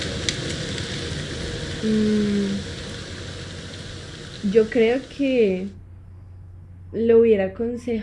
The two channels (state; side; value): identical; both; correlation 1.00